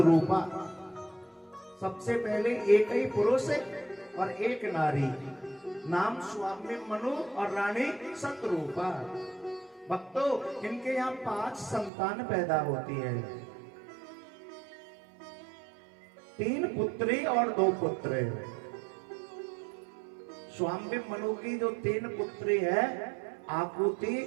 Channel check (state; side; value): drops out; left; at 11.9 s